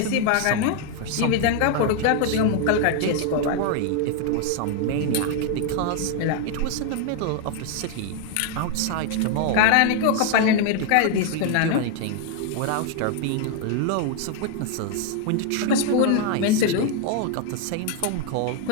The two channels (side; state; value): both; different; correlation 0.00